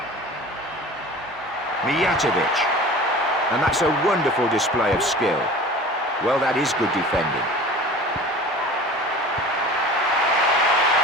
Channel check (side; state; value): both; normal; correlation 0.40